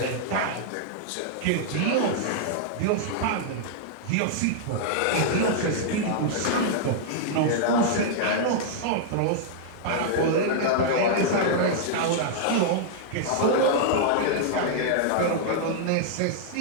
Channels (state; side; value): different; both; correlation -0.01